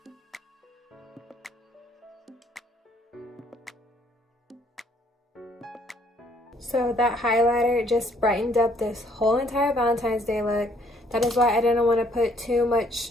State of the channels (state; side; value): normal; both; correlation 0.64